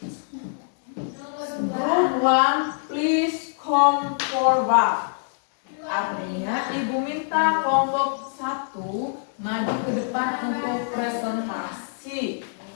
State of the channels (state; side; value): silent; right; digital silence